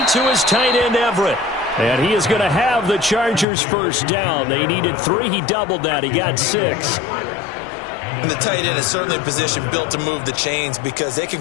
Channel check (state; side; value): drops out; right; at 3.5 s